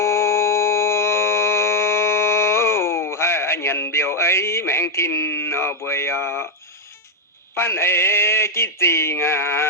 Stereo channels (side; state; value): both; normal; correlation 0.01